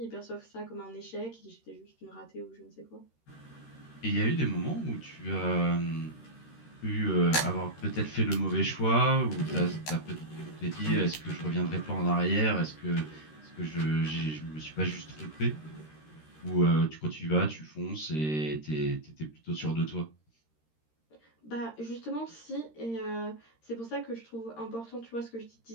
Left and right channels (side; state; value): right; late; 13 ms